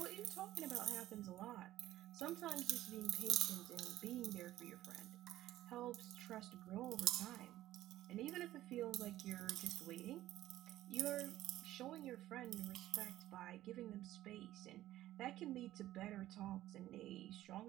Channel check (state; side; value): quieter; left; 14.5 dB